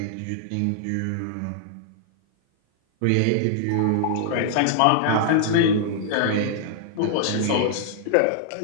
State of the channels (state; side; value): different; both; correlation -0.01